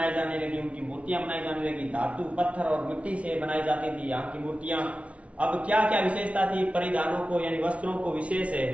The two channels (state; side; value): late; left; 0.063 ms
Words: जाने लगी, उनकी मूर्तियां बनाई जाने लगी, धातु पत्थर और मिट्टी से बनाई जाती थी यहाँ की मूर्तियां। अब क्या क्या विशेषता थी, परिधानों को यानी वस्त्रों को विशेष